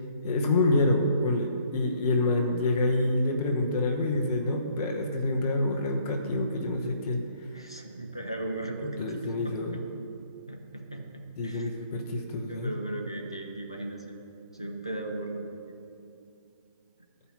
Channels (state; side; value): inverted; both; correlation -0.63